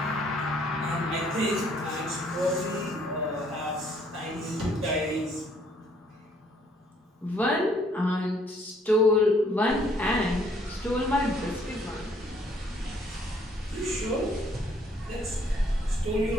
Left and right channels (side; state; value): both; normal; correlation 0.64